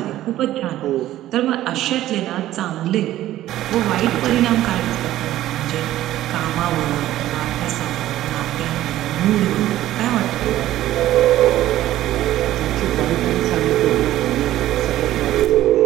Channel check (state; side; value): quieter; left; 14.1 dB